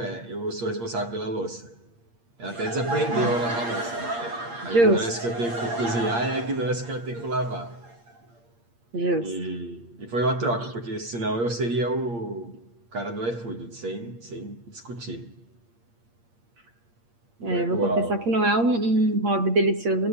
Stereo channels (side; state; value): left; late; 8.6 ms